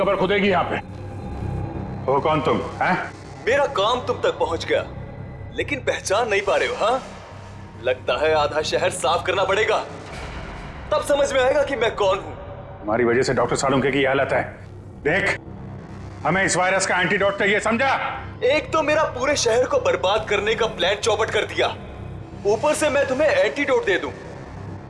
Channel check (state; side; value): identical; both; correlation 1.00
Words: खुदेगी यहाँ पे। हो कौन तुम? हैं? मेरा काम तुम तक पहुंच गया, लेकिन पहचान नहीं पा रहे हो? हाँ, लगता है आधा शहर साफ करना पड़ेगा, तब समझ में आएगा कि मैं कौन हूँ। हमारी वजह से डॉक्टर सालुंके की हालत है। देख, हमें इस वायरस का एंटीडोट चाहिए, समझा? एक तो मेरा पूरे शहर को बर्बाद करने का प्लान चौपट कर दिया, ऊपर से मैं तुम्हें एंटीडोट दे दूं।